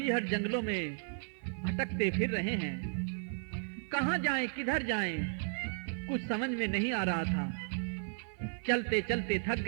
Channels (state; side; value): silent; left; 55 dB below the other